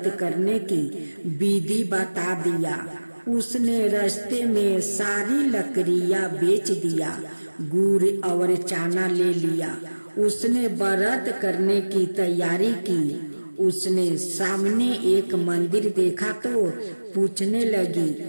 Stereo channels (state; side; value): inverted; both; correlation -1.00